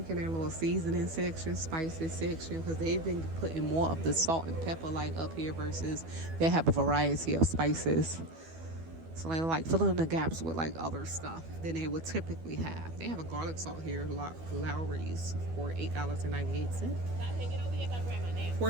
their little seasoning section, spices section, because they've been putting more of the salt and pepper like up here versus they have a variety of spices. So they're like filling in the gaps with like other stuff than they would typically have. They have a garlic salt here, Lowry's, for $8.98.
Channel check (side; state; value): left; late; 12 ms